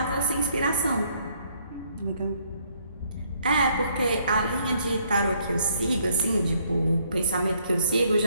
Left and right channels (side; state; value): both; inverted; correlation -0.66